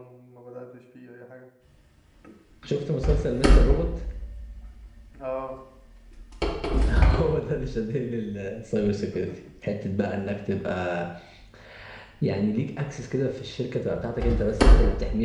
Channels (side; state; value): both; identical; correlation 1.00